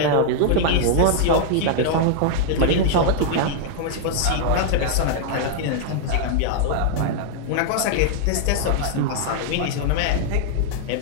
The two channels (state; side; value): different; both; correlation -0.01